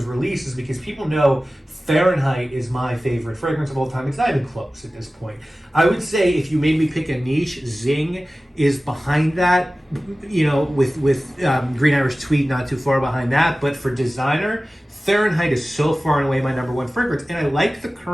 released is because people know Fahrenheit is my favorite fragrance of all time. It's not even close at this point. I would say if you made me pick a niche, Zing is behind that, with Green Irish Tweed not too far behind that. But for designer, Fahrenheit is so far and away my number one fragrance. And I like the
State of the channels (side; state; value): both; normal; correlation 0.96